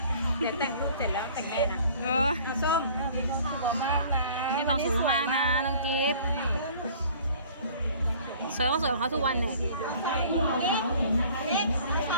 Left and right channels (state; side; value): inverted; both; correlation -0.50